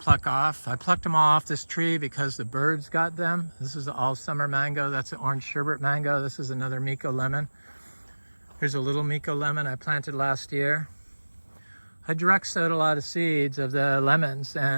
off. I plucked them all off this tree because the birds got them. This is the all summer mango. That's an orange sherbet mango. This is another Micco lemon. Here's a little Micco lemon I planted last year. I direct sowed a lot of seeds of the lemons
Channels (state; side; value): inverted; both; correlation -1.00